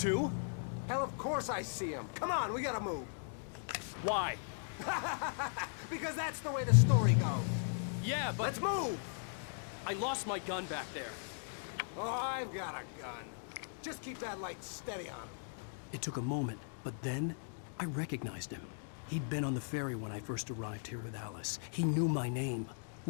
Hell, of course I see them. Come on, we gotta move. Why? Because that's the way the story goes. Yeah, but... Let's move! I lost my gun back there. Oh, I've got a gun. Just keep that light steady on him. It took a moment, but then I recognized him. He'd been on the ferry when I first arrived here with Alice. He knew my name.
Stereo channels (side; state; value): right; silent; digital silence